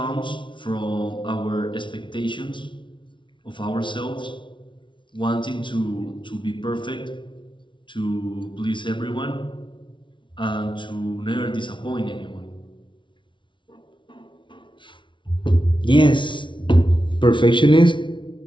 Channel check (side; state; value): right; late; 0.24 ms